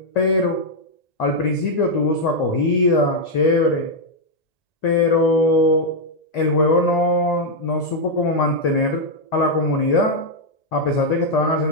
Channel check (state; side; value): late; right; 1.9 ms